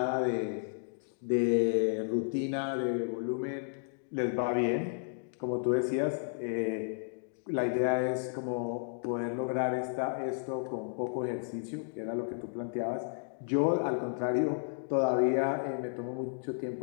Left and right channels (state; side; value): silent; right; digital silence